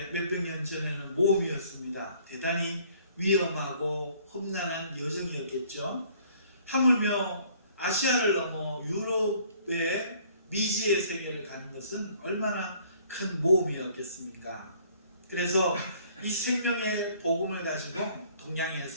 몇백 년 전에는 모험이었습니다. 대단히 위험하고 험난한 여정이었겠죠. 하물며 아시아를 넘어 유럽의 미지의 세계를 가는 것은 얼마나 큰 모험이었겠습니까? 그래서 이 생명의 복음을 가지고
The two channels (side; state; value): both; inverted; correlation -0.58